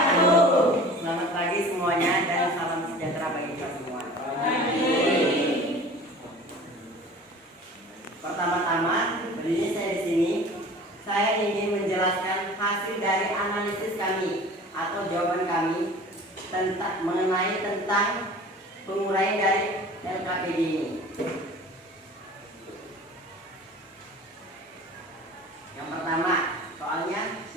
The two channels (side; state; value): both; normal; correlation 0.42